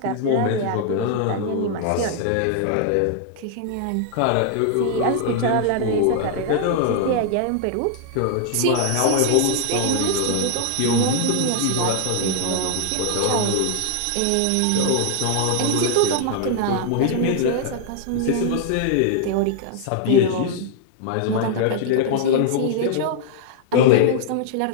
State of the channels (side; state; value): both; different; correlation 0.00